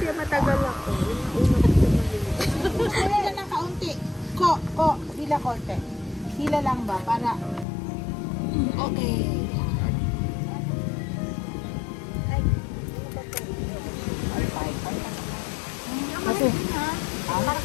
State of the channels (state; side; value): drops out; right; at 7.7 s